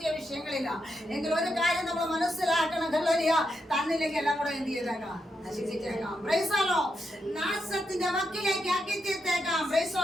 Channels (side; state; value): both; normal; correlation 0.83